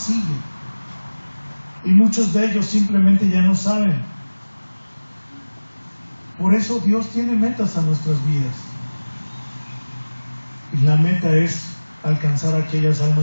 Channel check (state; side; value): inverted; both; correlation -1.00